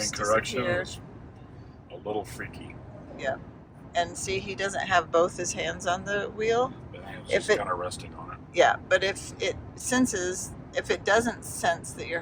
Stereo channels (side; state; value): both; identical; correlation 1.00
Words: disappear. A little freaky. Yeah. And see, he doesn't have both his hands on the wheel. It's just kind of resting on it. Yeah, but if it senses if it doesn't sense that your